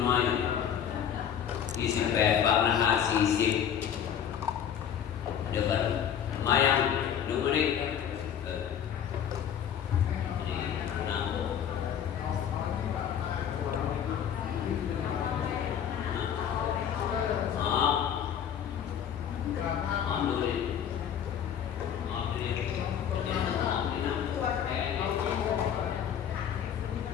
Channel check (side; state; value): right; quieter; 8.9 dB